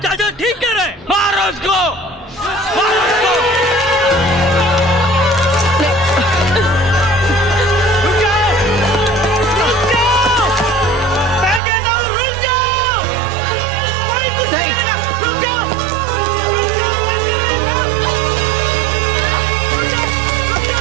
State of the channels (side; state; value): left; drops out; at 11.6 s